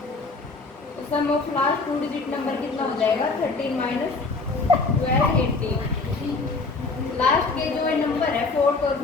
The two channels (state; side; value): quieter; right; 3.8 dB